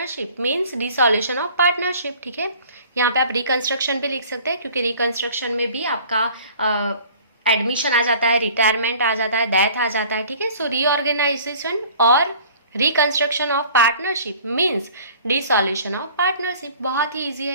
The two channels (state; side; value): inverted; both; correlation -0.49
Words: means dissolution of partnership, ठीक है। यहाँ पे आप रिकंस्ट्रक्शन भी लिख सकते हैं, क्योंकि रिकंस्ट्रक्शन में भी आपका एडमिशन आ जाता है, रिटायरमेंट आ जाता है, डेथ आ जाता है, ठीक है। सो रीऑर्गेनाइजेशन और reconstruction of partnership means dissolution of partnership. बहुत ही ईजी